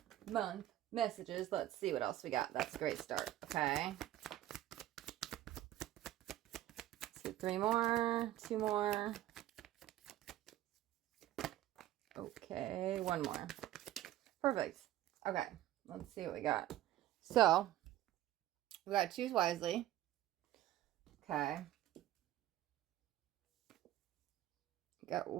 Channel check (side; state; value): left; quieter; 14.0 dB